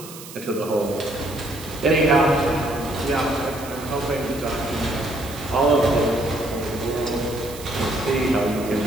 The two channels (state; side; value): noise; right; hiss, 15 dB below the sound